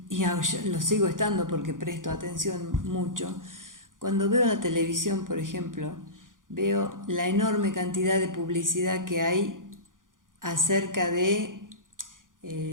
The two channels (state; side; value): late; left; 0.89 ms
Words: lo sigo estando porque presto atención mucho. Cuando veo la televisión, por ejemplo, veo la enorme cantidad de publicidad que hay acerca de